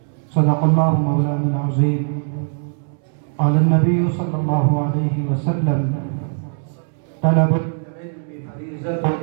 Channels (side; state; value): left; silent; 66 dB below the other